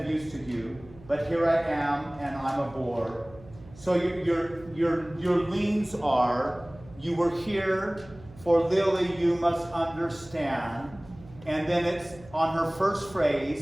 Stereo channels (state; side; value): noise; right; hum, 21 dB below the sound